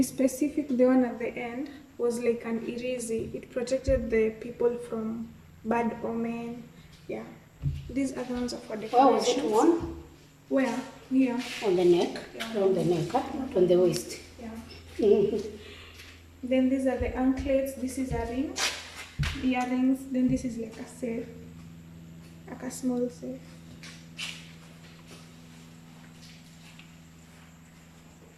specific, the one at the end was like an irizi. It protected the people from bad omen. Yeah, these are the ones for decorations. Where was it worn? Where? Here. On the neck? Yeah. On the neck, huh? Not on the waist. Yeah. Then these are the anklets. This is a ring, earrings. Then this is like a safe, like a small safe.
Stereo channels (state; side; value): identical; both; correlation 1.00